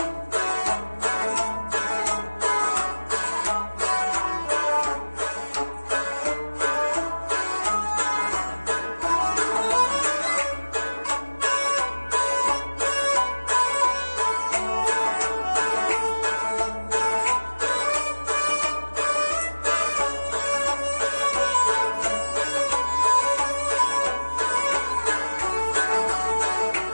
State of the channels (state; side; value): inverted; both; correlation -1.00